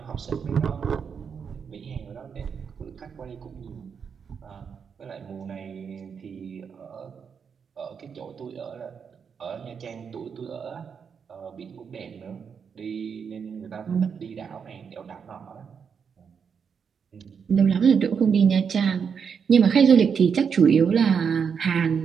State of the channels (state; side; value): quieter; left; 6.6 dB